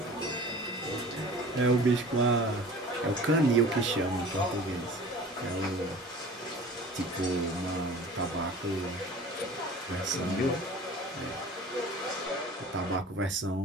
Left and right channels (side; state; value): both; normal; correlation 0.42